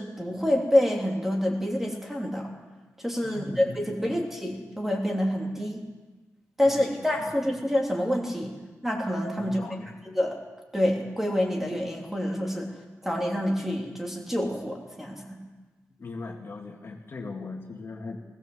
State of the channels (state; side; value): normal; both; correlation 0.95